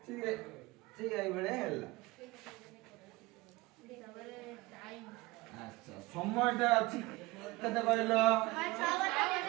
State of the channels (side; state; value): left; quieter; 21.5 dB